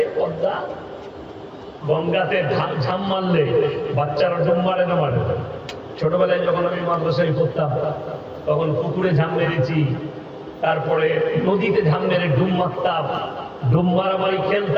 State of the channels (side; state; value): both; identical; correlation 1.00